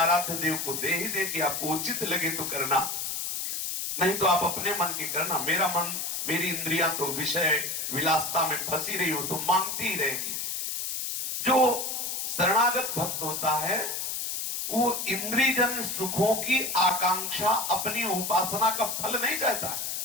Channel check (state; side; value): noise; left; hiss, 3 dB below the sound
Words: देव को दे ही दे कि आपको उचित लगे तो करना, नहीं तो आप अपने मन की करना। मेरा मन, मेरी इंद्रियां तो विषय विलासता में फंसी रही हो तो मांगती ही रहेगी। जो शरणागत भक्त होता है वो इंद्रियजन सुखों की आकांक्षा अपनी उपासना का फल नहीं चाहता।